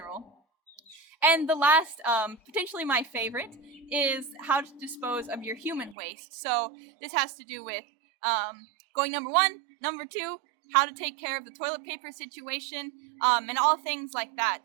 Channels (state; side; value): drops out; left; at 6.0 s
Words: And the last, potentially my favorite, is how to dispose of your human waste. So this has to do with going number one, number two, how to take care of the toilet paper situation, and all things like that.